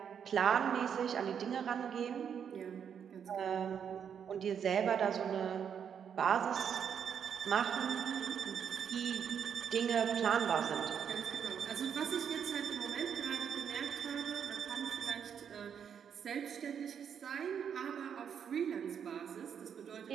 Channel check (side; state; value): left; quieter; 7.8 dB